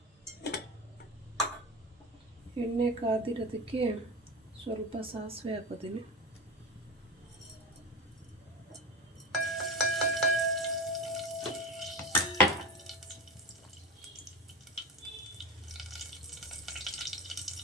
ಎಣ್ಣೆ ಕಾದಿರೋದಕ್ಕೆ ಸ್ವಲ್ಪ ಸಾಸಿವೆ ಹಾಕೋತೀನಿ.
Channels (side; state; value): both; normal; correlation 0.27